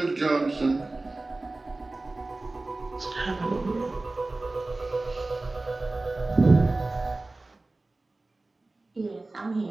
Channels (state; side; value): quieter; left; 3.1 dB